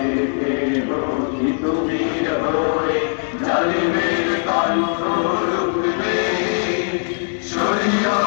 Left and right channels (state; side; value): silent; right; digital silence